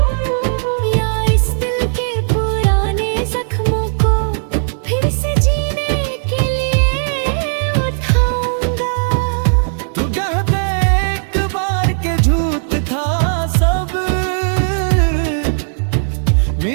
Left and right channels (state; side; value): silent; left; digital silence